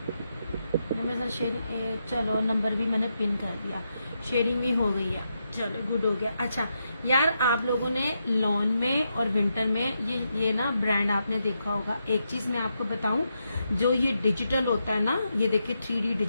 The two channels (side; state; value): both; inverted; correlation -0.83